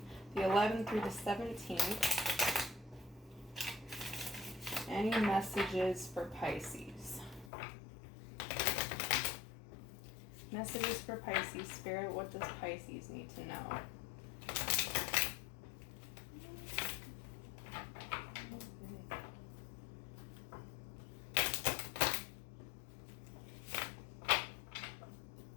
the 11th through the 17th. Any messages for Pisces? Messages for Pisces, Spirit, what does Pisces need to know?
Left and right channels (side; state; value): right; drops out; at 7.5 s